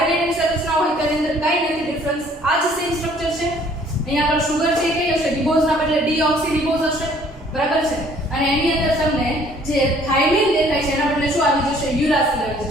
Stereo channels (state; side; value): normal; both; correlation 0.58